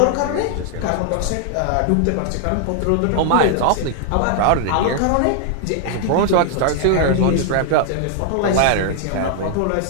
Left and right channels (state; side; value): different; both; correlation 0.00